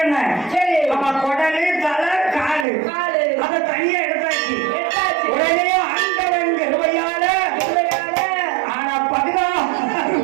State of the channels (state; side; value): drops out; left; at 2.7 s